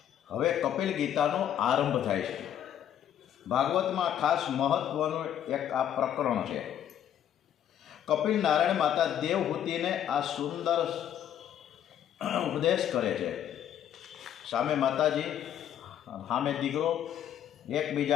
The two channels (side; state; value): right; quieter; 10.2 dB